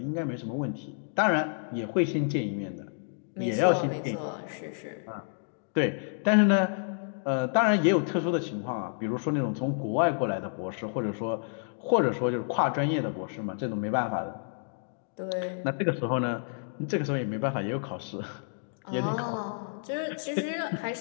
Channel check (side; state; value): right; silent; digital silence